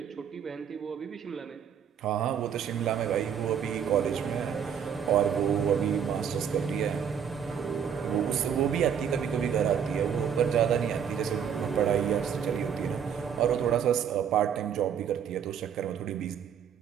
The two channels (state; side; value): quieter; left; 8.0 dB